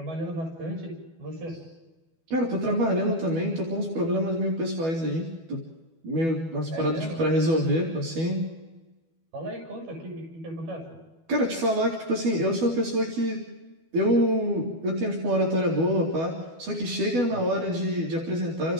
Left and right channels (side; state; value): left; late; 12 ms